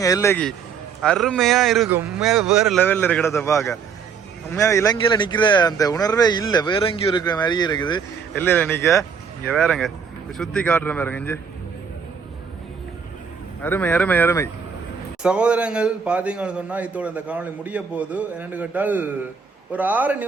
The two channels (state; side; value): quieter; left; 6.4 dB